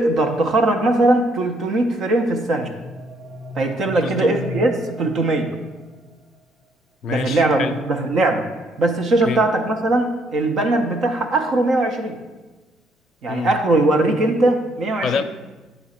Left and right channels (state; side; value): normal; both; correlation 0.69